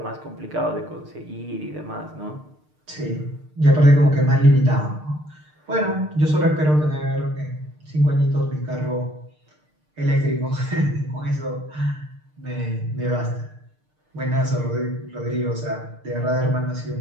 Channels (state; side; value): late; left; 6.6 ms